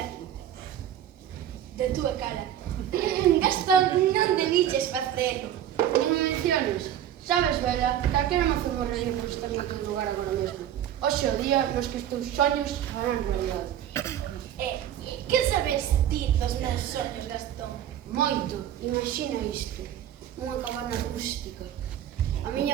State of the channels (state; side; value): quieter; left; 10.9 dB